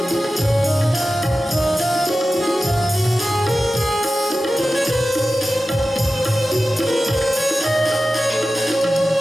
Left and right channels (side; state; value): both; normal; correlation 0.94